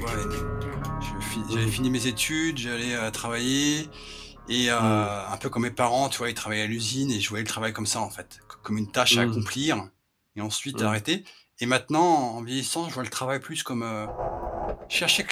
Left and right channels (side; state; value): both; identical; correlation 1.00